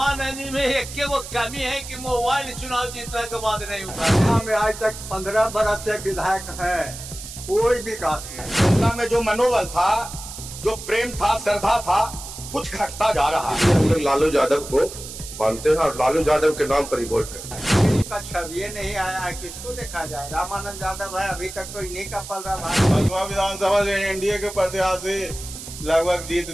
में एक वो कमी है कि मोबाइल चुनाव जीतने के बाद नहीं हुआ। हमें आज तक 15 बरस से विधायक है, कोई विकास नहीं। जनता में जो मनोबल था, जो प्रेम था, श्रद्धा था, कुछ घटता जा रहा है। हम लोग लालू यादव को मानते हैं और लालू यादव के नाम पर ही वोट करते हैं। का छवि नहीं आया है, किसको देखा जाए? रामानंद यादव है, अभी तक तो इन्हीं का पल रहा है। भदवा विधानसभा से एनडीए के प्रत्याशी लगभग जीत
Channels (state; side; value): noise; right; hiss, 11 dB below the sound